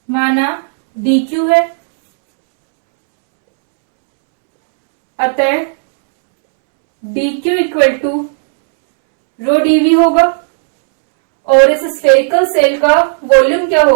माना डी क्यू है। अतः d q equal to rho d v होगा और इस स्फेरिकल सेल का वॉल्यूम क्या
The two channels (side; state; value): left; silent; digital silence